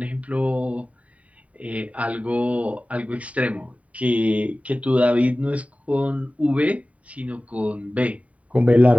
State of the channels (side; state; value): left; late; 0.068 ms